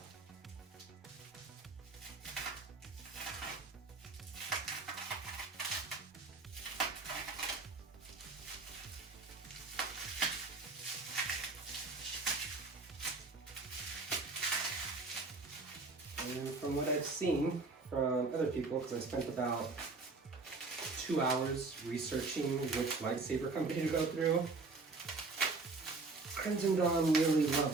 And from what I've seen from other people, because I spent about 2 hours researching which lightsaber company to go through, Crimson Dawn really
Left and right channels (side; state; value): left; quieter; 3.7 dB